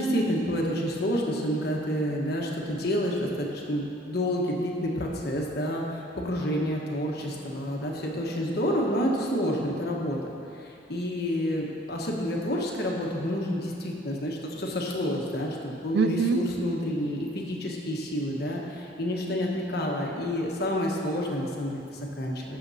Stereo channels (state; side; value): normal; both; correlation 0.55